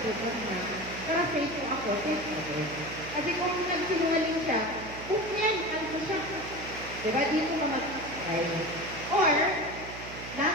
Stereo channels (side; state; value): right; noise; hum, 12 dB below the sound